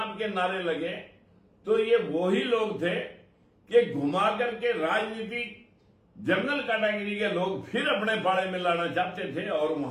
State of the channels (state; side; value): identical; both; correlation 1.00